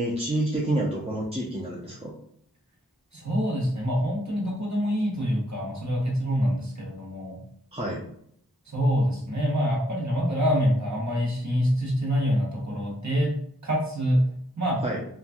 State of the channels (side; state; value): both; normal; correlation 0.74